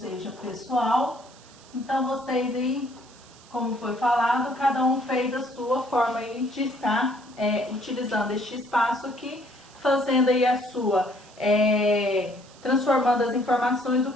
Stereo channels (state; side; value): noise; right; hiss, 24 dB below the sound